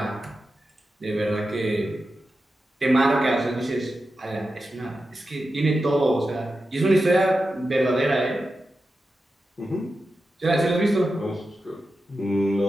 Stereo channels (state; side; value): normal; both; correlation 0.91